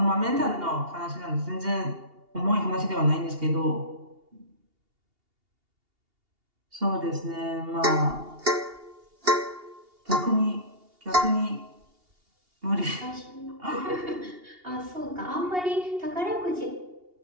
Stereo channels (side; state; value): left; late; 2.8 ms